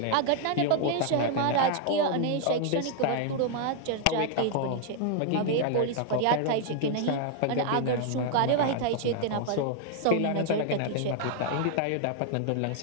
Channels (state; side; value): different; both; correlation 0.00